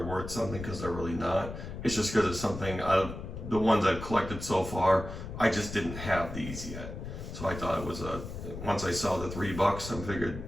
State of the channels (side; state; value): left; noise; rumble, 9 dB below the sound